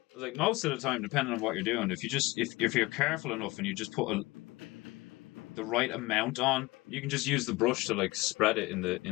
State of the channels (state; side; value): quieter; right; 21.9 dB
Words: Like most of the time, depending on what you're doing, if you just if you're careful enough and you just put the right amount on, you can just use the brush to like spread it